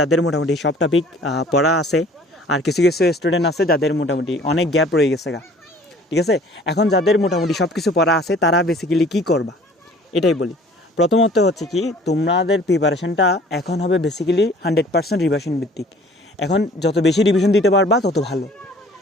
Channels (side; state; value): both; normal; correlation 0.52